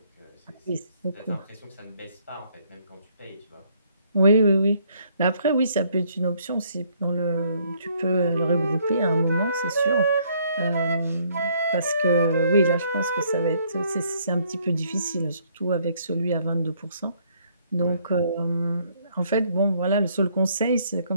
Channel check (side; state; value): both; inverted; correlation -0.67